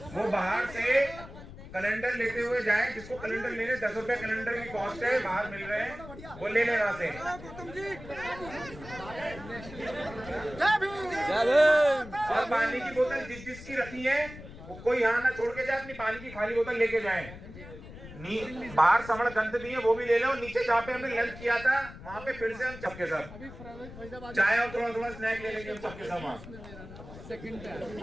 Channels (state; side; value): noise; left; rumble, 15 dB below the sound